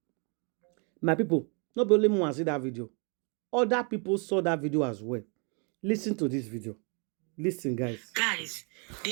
My people, not only me want to see that video. Other people saw that video as well. Listen to this video. Listen, guys. Guys,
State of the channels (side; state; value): left; quieter; 36.3 dB